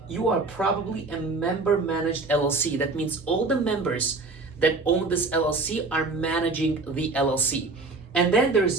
you are probably a member-managed LLC. That means all the members that own this LLC are managing the LLC. And then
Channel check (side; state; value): left; quieter; 3.6 dB